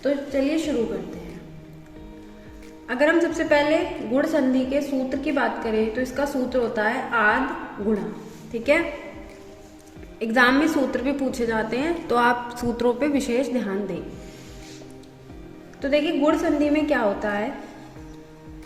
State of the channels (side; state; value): both; identical; correlation 1.00